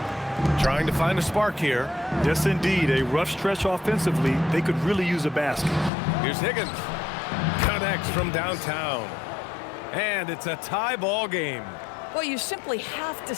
Trying to find a spark here. Yes, indeed. A rough stretch offensively. They could really use a basket. Here's Higgins. Connects from downtown. And it's a tie ball game. Well, you simply have to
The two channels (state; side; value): drops out; right; at 5.9 s